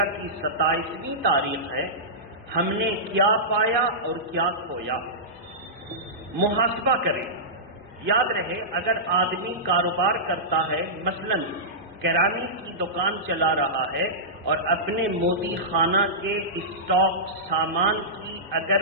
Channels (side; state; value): both; normal; correlation -0.16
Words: کی 27ویں تاریخ ہے، ہم نے کیا پایا اور کیا کھویا، محاسبہ کریں۔ یاد رہے اگر آدمی کاروبار کرتا ہے، مثلا کرانے کی دکان چلا رہا ہے اور اپنے مودی خانہ کے اسٹاک سامان کی